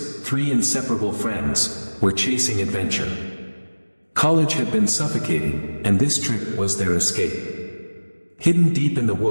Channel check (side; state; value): both; inverted; correlation -1.00